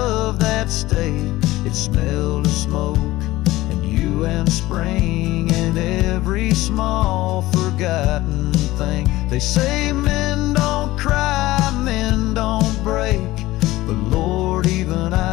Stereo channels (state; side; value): quieter; right; 17.7 dB